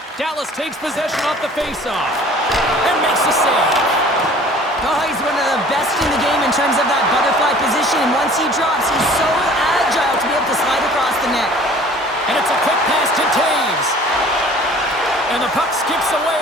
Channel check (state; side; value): normal; both; correlation 0.49